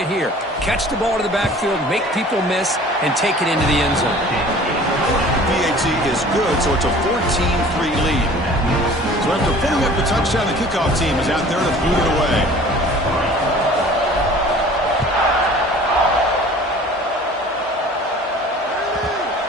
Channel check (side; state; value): both; normal; correlation 0.47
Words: here. Catch the ball to the backfield, make people miss, and take it into the end zone. PAT is good, so it's a 14-3 lead. So after putting up the touchdown, the kickoff team is out there to boot it away.